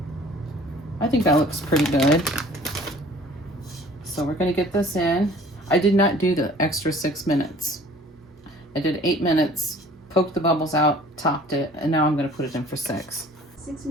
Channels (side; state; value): both; normal; correlation 0.50